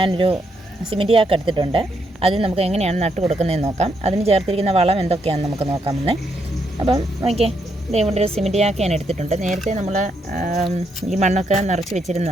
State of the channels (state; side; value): normal; both; correlation 0.77